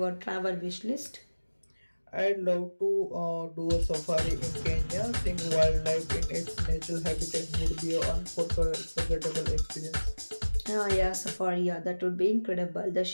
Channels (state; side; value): inverted; both; correlation -1.00